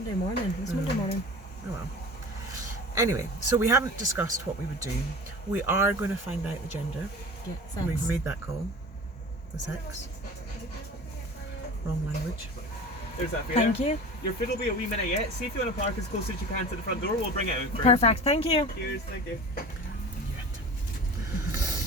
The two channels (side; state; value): both; normal; correlation 0.37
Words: morning. It was Monday morning. Oh well. Anyway, so we haven't discussed what we would do. We are going to find out the gender. Yeah, We've sex. made that call. The sex. Wrong language. There's that for Thank you. Your food will be a wee minute yet. See if you want to park as close as you can to the front door. We'll bring it out for you. Perfect. Thank you. Cheers, thank you.